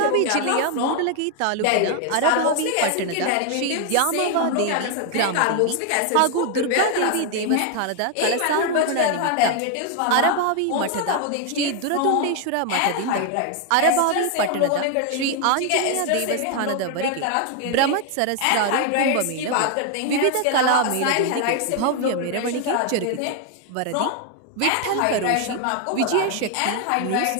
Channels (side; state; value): both; different; correlation 0.00